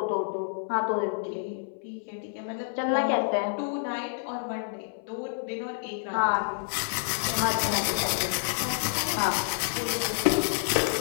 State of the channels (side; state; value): right; silent; 59 dB below the other